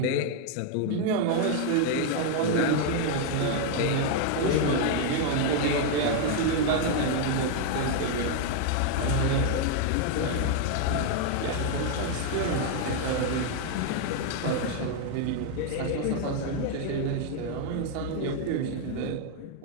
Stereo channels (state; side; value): different; both; correlation 0.00